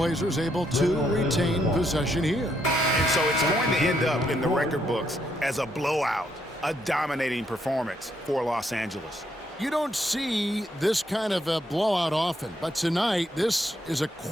able to retain possession here. And so it's going to end up in the record books as a blowout, a dominating performance for Los Angeles. You don't see this kind of a blowout often, but tonight this is a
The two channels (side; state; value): both; normal; correlation 0.75